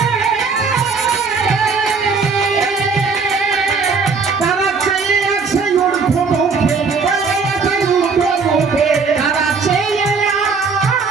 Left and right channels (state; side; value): quieter; left; 4.9 dB